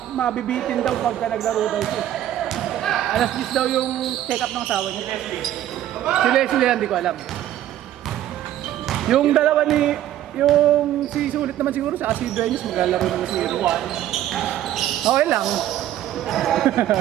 mabibitin daw pagka naglaro daw siya. Alas 10 daw yung check up ng asawa niya. Si Leslie yan, di ko alam. Yung dalawa ni yung si Sulit naman siguro sa si Dueñas maglalaro naman siguro. Okay lang.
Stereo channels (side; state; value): left; quieter; 12.4 dB